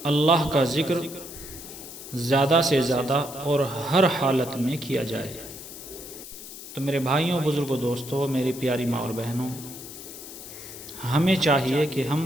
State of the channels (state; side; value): noise; left; hiss, 13 dB below the sound